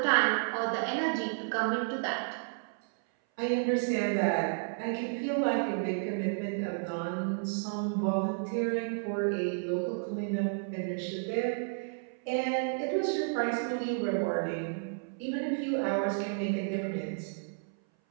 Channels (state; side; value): silent; left; 57 dB below the other